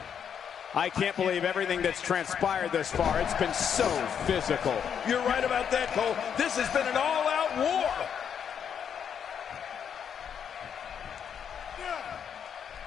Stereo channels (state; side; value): quieter; right; 7.9 dB